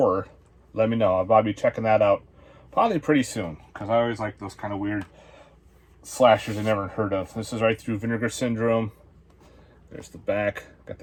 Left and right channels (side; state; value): both; identical; correlation 1.00